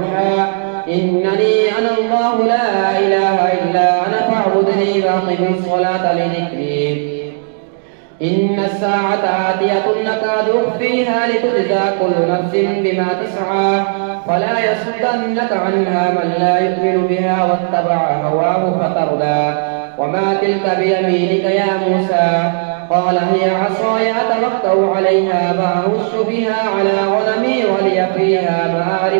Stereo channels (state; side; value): silent; left; digital silence